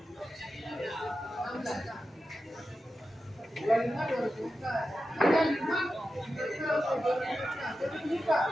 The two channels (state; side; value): normal; both; correlation 0.91